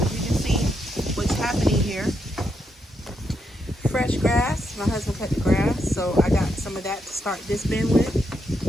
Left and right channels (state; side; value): normal; both; correlation 0.80